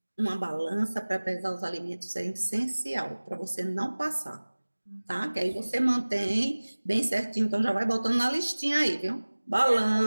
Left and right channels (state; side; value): inverted; both; correlation -1.00